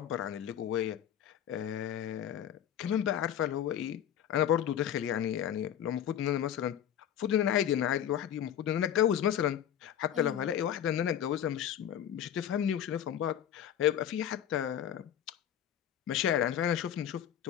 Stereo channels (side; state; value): right; quieter; 9.9 dB